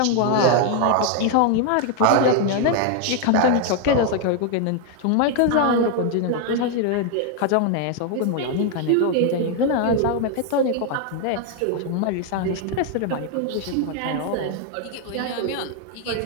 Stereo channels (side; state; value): both; different; correlation 0.00